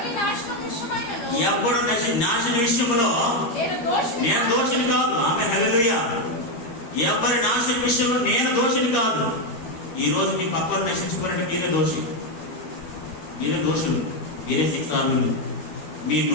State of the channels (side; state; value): right; late; 12 ms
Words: నాశనం విషయమైనను ఎవడు నాశన విషయంలో నేను దోషిని కాదు. ఆమేన్ హల్లెలూయా. ఎవరి నాశన విషయంలో నేను దోషిని కాదు. ఈ రోజు మీ పక్కన నశించుకోవాలంటే మీరే దోషి, మీరే దోషులు, మీరే శిక్షార్హులు. మీ